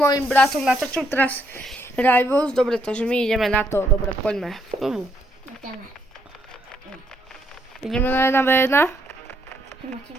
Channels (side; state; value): both; normal; correlation 0.73